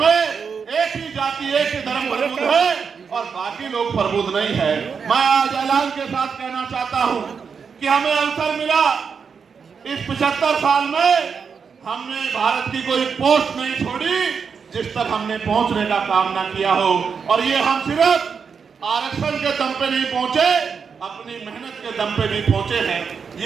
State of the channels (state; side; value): quieter; left; 6.1 dB